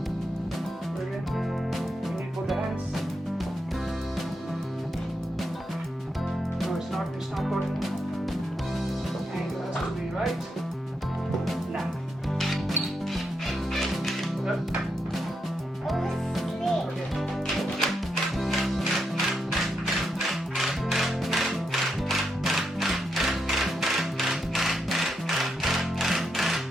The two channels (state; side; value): normal; both; correlation 0.82